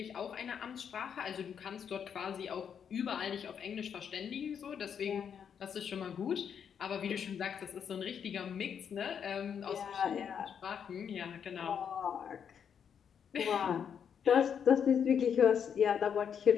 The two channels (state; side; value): quieter; right; 7.7 dB